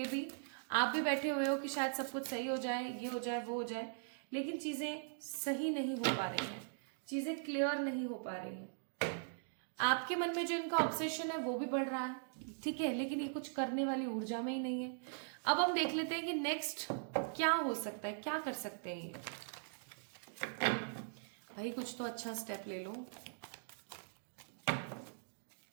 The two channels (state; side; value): silent; left; digital silence